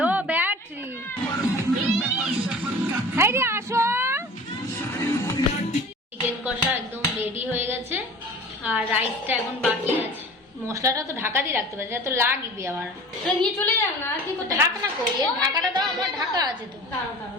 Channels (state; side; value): normal; both; correlation 0.41